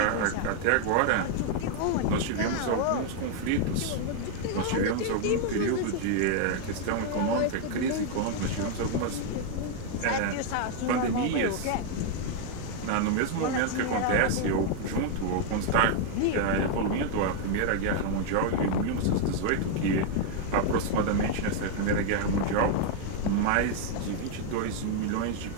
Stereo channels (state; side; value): different; both; correlation 0.00